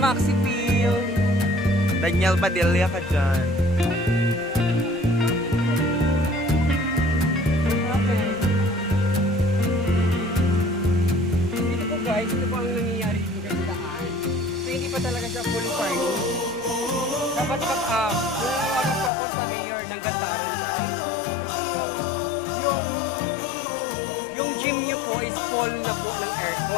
Peel. Daniel Padilla ka dyan. Okay. Dito po guys, ito po ang nangyayari dito sa daan. So hindi pa talaga siya full farming. Dapat po ako sa mayor ng Gataran guys. Yung gym nyo po is full na po ng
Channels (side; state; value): right; drops out; at 19.1 s